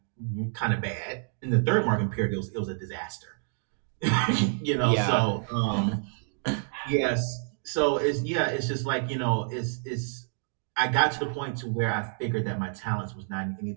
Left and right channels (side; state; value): left; silent; digital silence